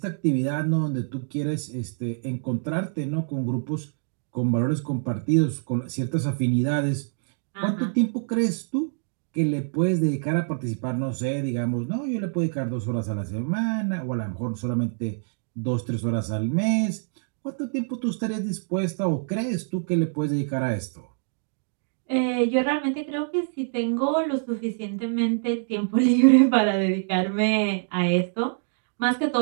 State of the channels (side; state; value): left; silent; digital silence